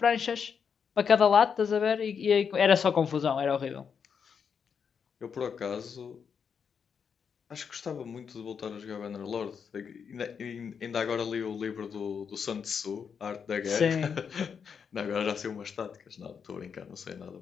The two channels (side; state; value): right; quieter; 6.7 dB